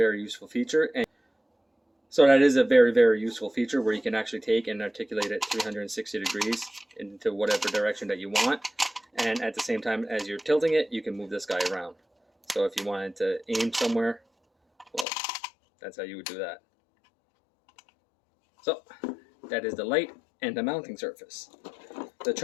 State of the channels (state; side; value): drops out; right; at 15.1 s